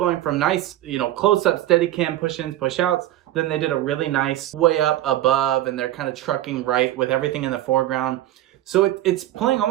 from nice, close-up, steady cam push-ins, push-outs. Then they did a really nice way up above, and they're kind of trucking right with everything in the foreground. So it's playing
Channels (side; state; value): left; quieter; 14.0 dB